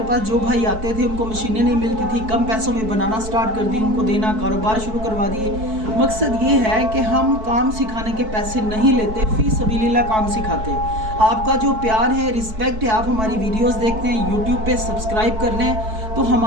पास जो भाई आते थे उनको मशीनें नहीं मिलती थी, कम पैसों में बनाना स्टार्ट कर दी, उनको देना, कारोबार शुरू करवा दिए। मकसद ये है कि हम काम सिखाने के पैसे नहीं लेते, फ़ी सबीलिल्लाह काम सिखाते हैं। आपका जो प्यार है, रिस्पेक्ट है, आप हमारी वीडियोस देखते हैं, यूट्यूब पे सब्सक्राइब कर लें, तो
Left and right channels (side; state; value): left; late; 4.6 ms